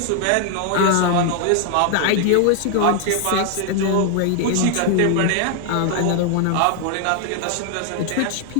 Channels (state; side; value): different; both; correlation 0.00